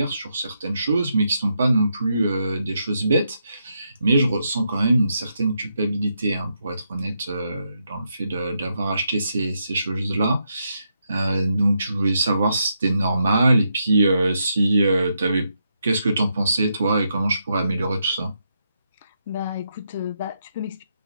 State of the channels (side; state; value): both; inverted; correlation -0.81